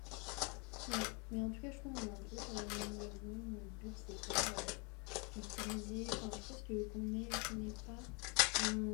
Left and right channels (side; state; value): right; quieter; 31.1 dB